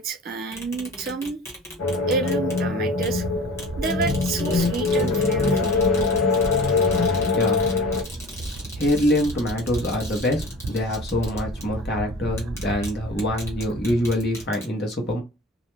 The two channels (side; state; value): both; normal; correlation 0.40